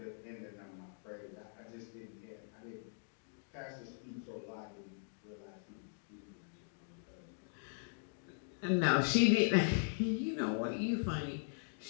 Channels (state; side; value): silent; right; digital silence